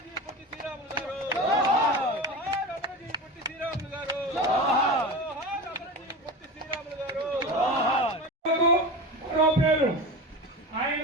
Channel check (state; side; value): normal; both; correlation 0.28